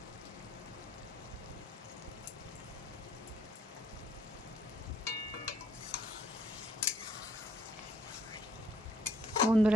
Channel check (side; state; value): both; normal; correlation 0.66